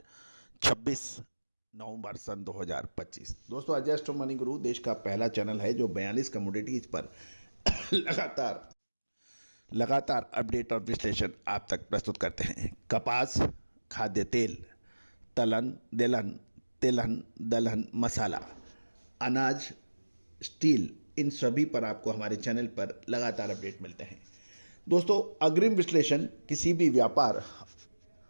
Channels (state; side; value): inverted; both; correlation -1.00